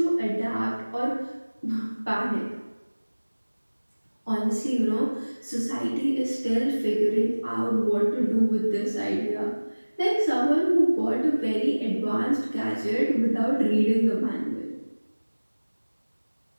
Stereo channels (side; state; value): both; inverted; correlation -1.00